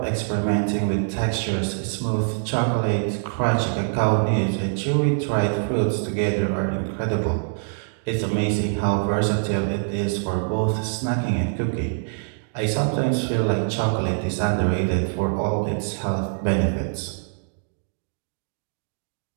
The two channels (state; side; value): silent; left; digital silence